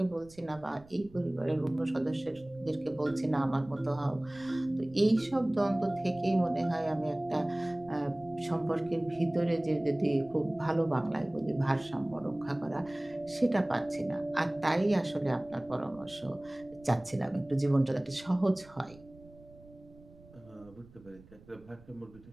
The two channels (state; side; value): noise; right; rumble, 23 dB below the sound